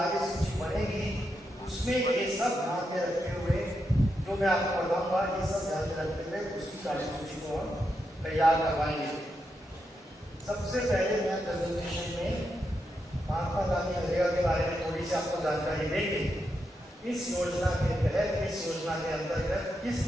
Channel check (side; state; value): both; normal; correlation 0.84